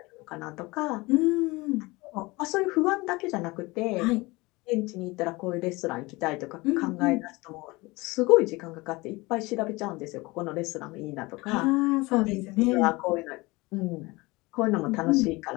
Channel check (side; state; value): right; quieter; 22.9 dB